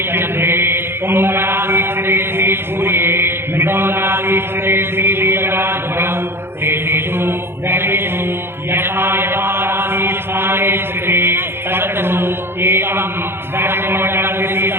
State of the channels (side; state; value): left; late; 0.11 ms